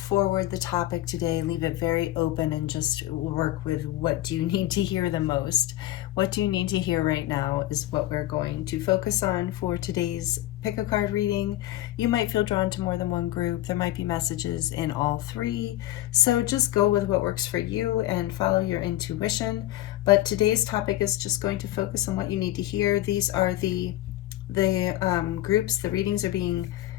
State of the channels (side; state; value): right; quieter; 14.9 dB